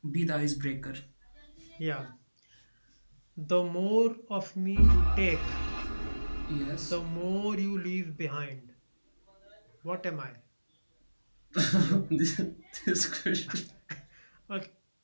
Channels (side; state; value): both; inverted; correlation -1.00